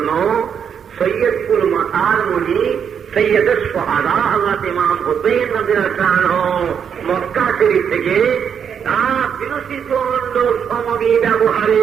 সৈয়দপুর মাতার মণি সৈয়দ সোহাদা হযরত ইমাম হুসাইন রাদিয়াল্লাহু আনহু মক্কা শরীফ থেকে তার বিরোচিত সমবি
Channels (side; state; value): left; quieter; 7.6 dB